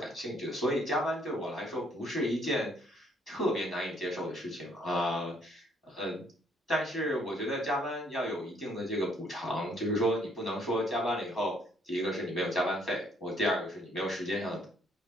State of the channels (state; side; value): normal; both; correlation 0.66